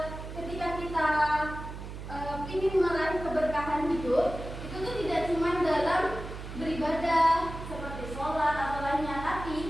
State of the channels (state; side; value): noise; right; hum, 10 dB below the sound